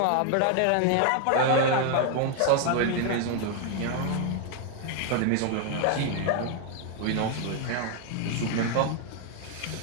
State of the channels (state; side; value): different; both; correlation 0.00